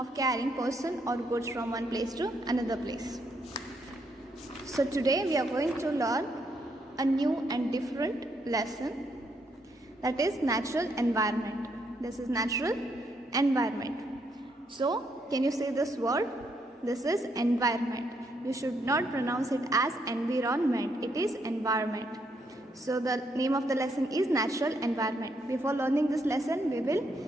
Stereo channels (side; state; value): both; normal; correlation 0.75